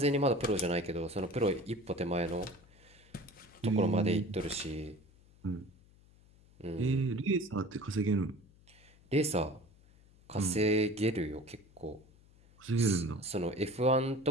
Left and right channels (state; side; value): noise; left; hum, 27 dB below the sound